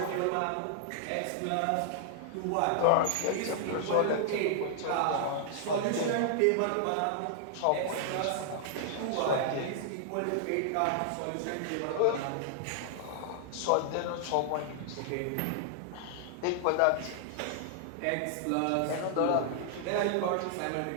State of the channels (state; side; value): different; both; correlation -0.01